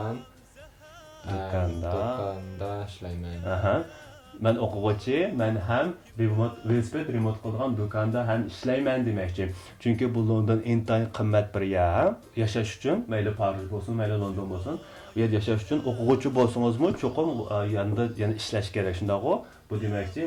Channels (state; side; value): identical; both; correlation 1.00